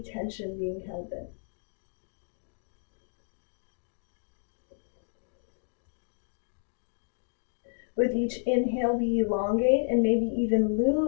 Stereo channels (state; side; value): silent; right; digital silence